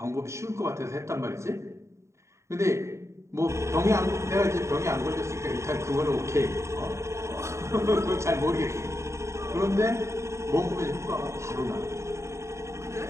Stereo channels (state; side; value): late; left; 0.14 ms